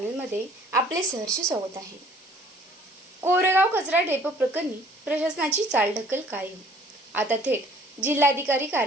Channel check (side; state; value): both; normal; correlation 0.56